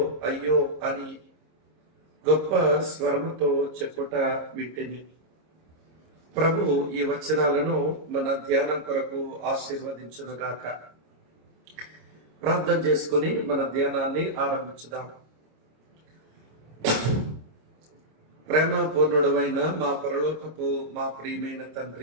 అయ్యో అని గొప్ప స్వరముతో చెప్పుట వింటిని. ప్రభు ఈ వచనాలను మన ధ్యానం కొరకు ఆశీర్వదించునుగాక. ప్రార్థన చేసుకుని మన ధ్యానాన్ని ఆరంభించుదాం. ప్రేమపూర్ణుడైన మా పరలోకపు మా ప్రియమైన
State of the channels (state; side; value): late; left; 26 ms